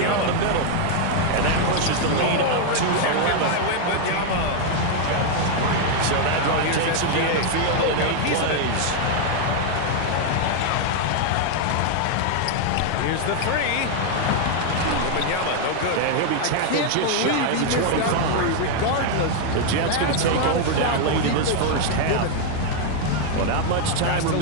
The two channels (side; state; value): both; different; correlation 0.00